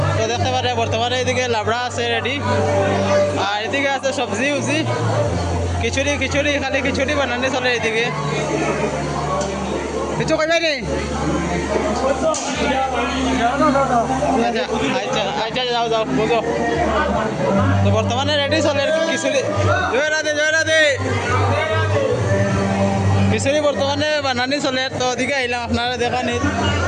তো দেখতে পারে বর্তমানে এদিকে লাবড়া আছে রেডি, আর এদিকে আছে সবজি উবজি খিচুড়ি খিচুড়ি খালি খিচুড়ি বানানি চলে এদিকে। কিছু কইবে নি? আচ্ছা আচ্ছা যাও যাও বুঝো। তো বর্তমানে রেডি চলে খিচুড়ি। জয় রাধে জয় রাধে। খিচুড়ি বর্তমানে বানানি চলে, তো ওদিকে আইলাম আপনারা দেখানি।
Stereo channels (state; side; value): identical; both; correlation 1.00